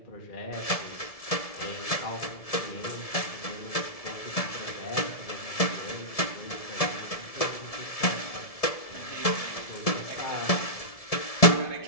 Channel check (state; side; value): late; right; 1.7 ms